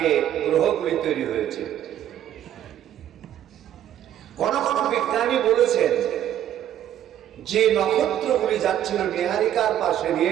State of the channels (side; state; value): left; quieter; 11.1 dB